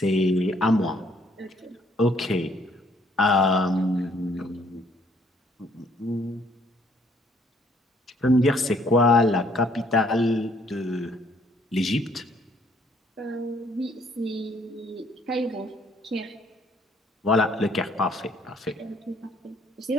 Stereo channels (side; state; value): both; normal; correlation 0.64